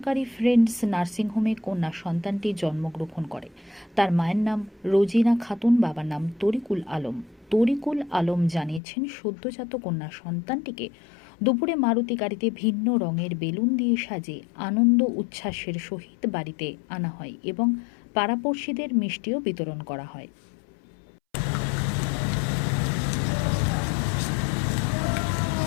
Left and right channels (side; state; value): right; drops out; at 8.8 s